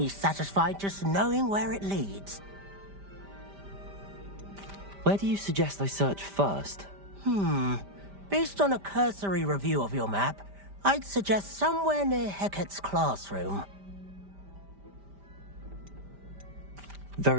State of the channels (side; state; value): left; late; 5.1 ms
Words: satisfied just knowing where it leads. Where do you suggest I search first? Based on a cursory review of your map, I'd suggest somewhere near Hecat's classroom.